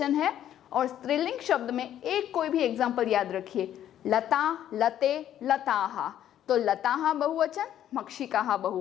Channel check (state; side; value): quieter; right; 11.1 dB